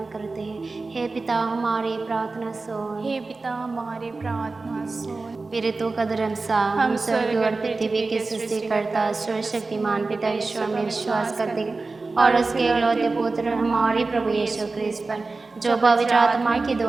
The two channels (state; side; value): quieter; left; 3.7 dB